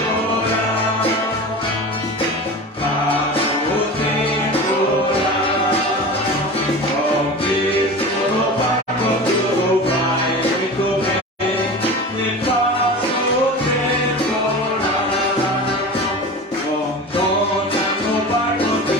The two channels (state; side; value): normal; both; correlation 0.32